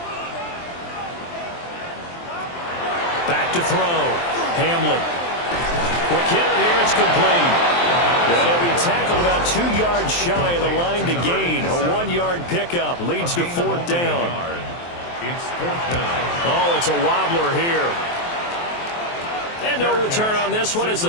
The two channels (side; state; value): right; late; 23 ms